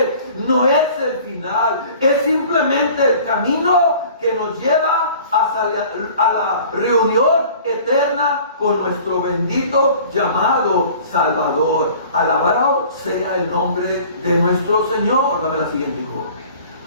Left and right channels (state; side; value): inverted; both; correlation -0.47